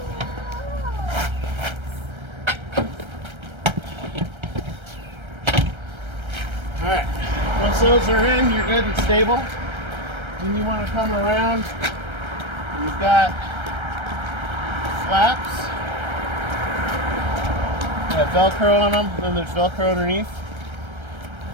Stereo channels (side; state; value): left; late; 1.3 ms